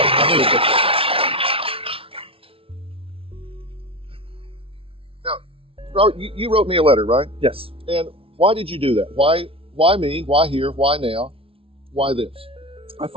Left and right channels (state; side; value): late; left; 0.26 ms